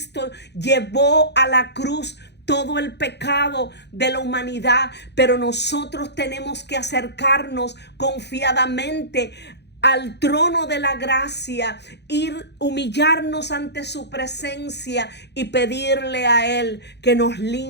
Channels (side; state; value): right; late; 0.50 ms